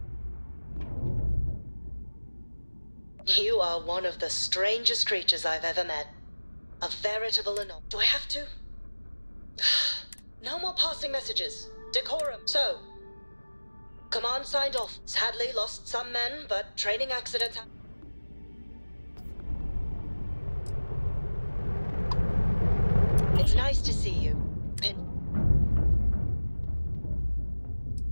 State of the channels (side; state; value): both; inverted; correlation -1.00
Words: You are one of the strangest creatures I've ever met. A veritable anomaly. Do I have to? No more passing messages. Decorum. So, command signed off. Sadly lost some men, but training accidents happen. It's nice to see you.